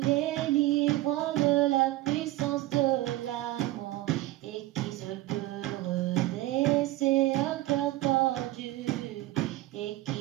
de la puissance de la mort et qui seul peut redresser un cœur tordu et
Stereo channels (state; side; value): quieter; left; 16.9 dB